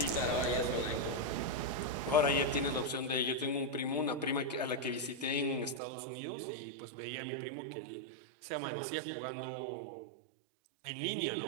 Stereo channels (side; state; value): left; drops out; at 5.8 s